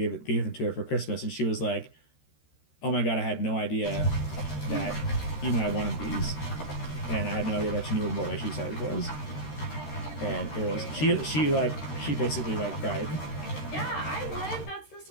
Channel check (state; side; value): late; right; 13 ms